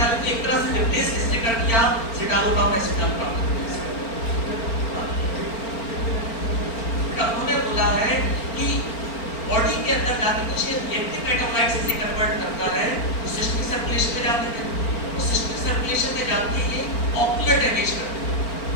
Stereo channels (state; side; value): late; right; 4.4 ms